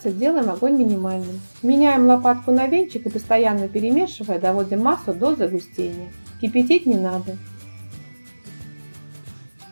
делаем огонь минимальным. Меняем лопатку на венчик и постоянно перемешивая, доводим массу до загустения. Кипятить не надо.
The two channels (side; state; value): both; inverted; correlation -1.00